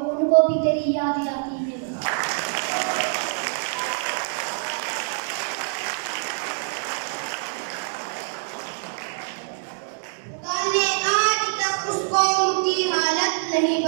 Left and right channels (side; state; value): left; silent; digital silence